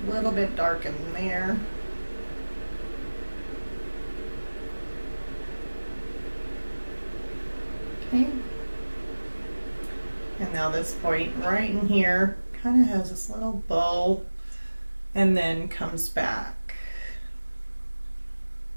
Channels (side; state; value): both; inverted; correlation -1.00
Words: a little bit dark in there. Okay. And now this point right in here kind of has this little bow and then comes back.